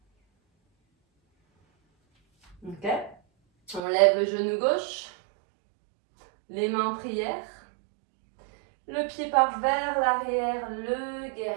Ok. On lève le genou gauche, les mains en prière. Le pied part vers l'arrière, le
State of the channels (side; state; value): left; drops out; at 3.8 s